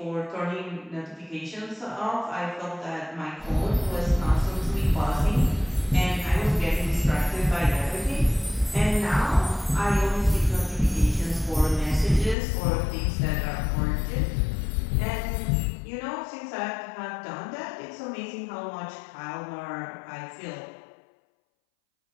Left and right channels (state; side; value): drops out; right; at 12.4 s